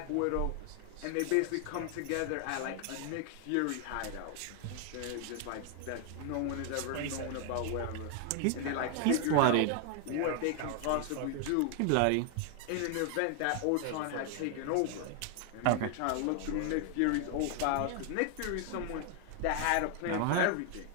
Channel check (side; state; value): both; different; correlation 0.00